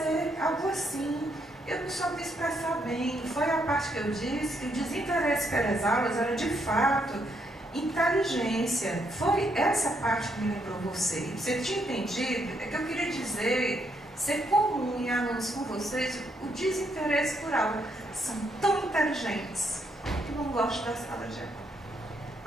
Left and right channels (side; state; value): both; normal; correlation 0.75